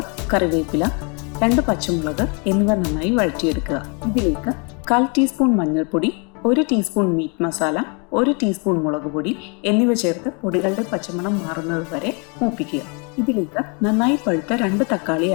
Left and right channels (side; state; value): right; quieter; 34.4 dB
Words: കറിവേപ്പില, 2 പച്ചമുളക് എന്നിവ നന്നായി വഴറ്റിയെടുക്കുക. ഇതിലേക്ക് 1/4 ടീസ്പൂൺ മഞ്ഞൾപ്പൊടി, 1 ടീസ്പൂൺ മീറ്റ് മസാല, 1 ടീസ്പൂൺ മുളക് പൊടി എന്നിവ ചേർത്ത് പൊടികളുടെ പച്ചമണം മാറുന്നത് വരെ മൂപ്പിക്കുക. ഇതിലേക്ക് നന്നായി പഴുത്ത 2 തക്കാളി